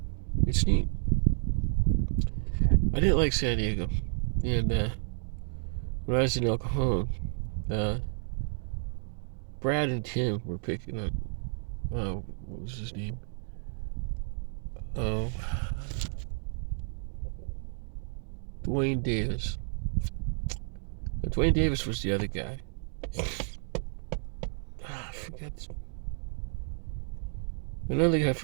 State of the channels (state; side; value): silent; left; 57 dB below the other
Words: neat. I didn't like San Diego, and when I was in El Cajon, Brad and Tim were picking up, what was his name? Oh, Dwayne Davis. Dwayne Davis was the other guy. I forgot. Another guy